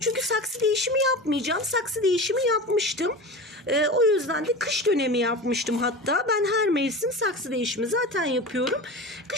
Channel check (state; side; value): normal; both; correlation 0.30